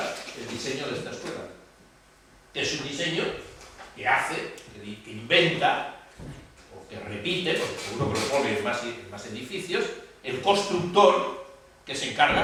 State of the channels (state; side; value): identical; both; correlation 1.00